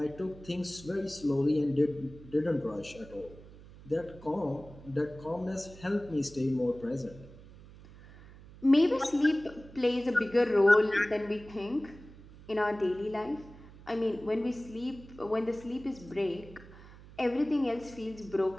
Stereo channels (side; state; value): right; noise; hum, 19 dB below the sound